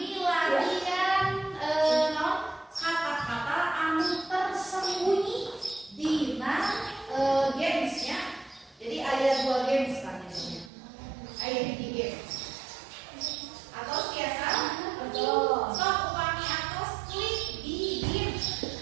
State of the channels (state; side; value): drops out; left; at 10.7 s